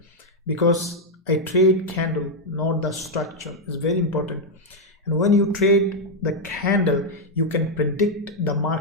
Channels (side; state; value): both; normal; correlation 0.00